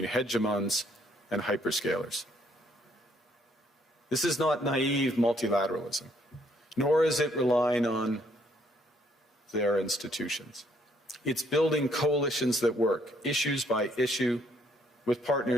hegemons and hyperscalers. This is not naive multilateralism, nor is it relying on their institutions. It's building coalitions that work, issues by issue, with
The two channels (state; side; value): normal; both; correlation 0.68